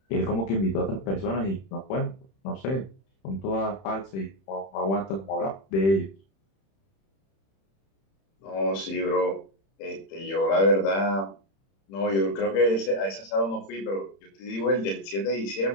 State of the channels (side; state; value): right; late; 31 ms